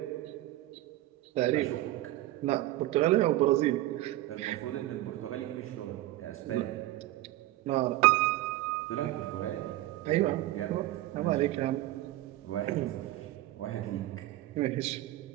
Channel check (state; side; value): quieter; left; 16.1 dB